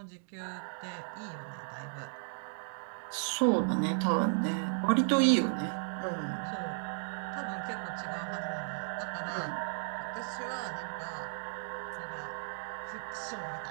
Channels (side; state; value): left; silent; digital silence